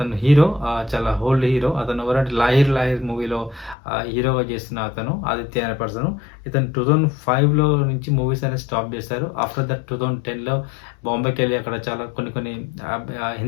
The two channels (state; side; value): drops out; right; at 3.8 s